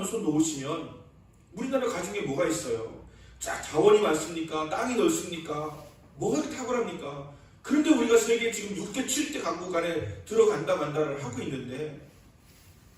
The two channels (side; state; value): both; identical; correlation 1.00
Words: 손 놓으시면 우리나라 가정에 뭐가 있어요? 자, 자원이 많습니까? 땅이 넓습니까? 뭐가 그렇게 탁월합니까? 그런데 우리가 세계 지금 6대, 7대 강국 안에 들어간다 만다를 하고 있는데